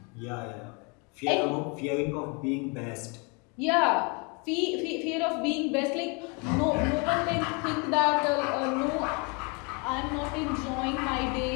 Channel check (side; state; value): right; quieter; 32.0 dB